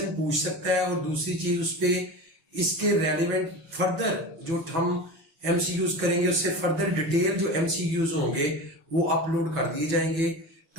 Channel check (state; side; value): late; left; 6.1 ms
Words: पूछ सकता है। और दूसरी चीज, उस पर इसके रेलिवेंट फर्दर जो हम एमसीक्यूज करेंगे उससे फर्दर डिटेल जो एमसीक्यूज होंगे वो अपलोड कर दिए जाएंगे,